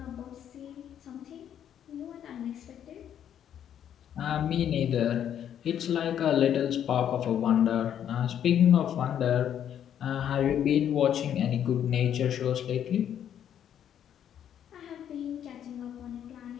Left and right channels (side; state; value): right; quieter; 9.7 dB